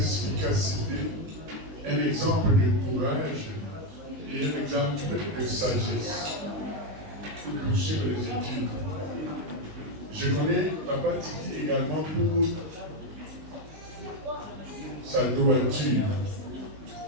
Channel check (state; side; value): late; left; 19 ms